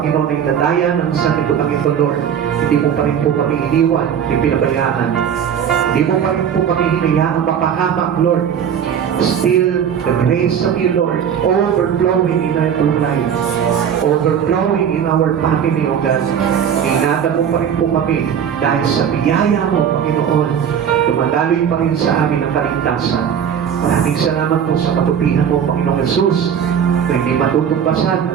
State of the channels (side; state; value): left; quieter; 8.3 dB